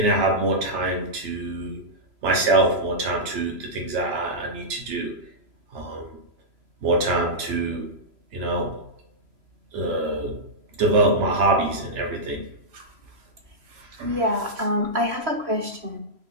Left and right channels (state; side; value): late; left; 3.0 ms